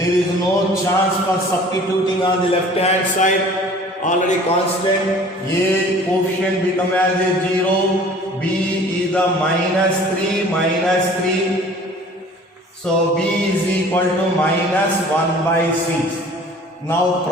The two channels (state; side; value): normal; both; correlation 0.48